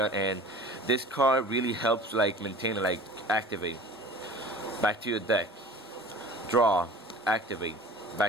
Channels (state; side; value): normal; both; correlation 0.42